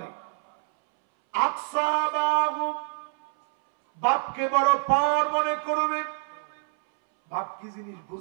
আকসাবাহু, বাপকে বড় পার মনে করবেন। বাপ কি জিনিস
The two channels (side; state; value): left; silent; 61 dB below the other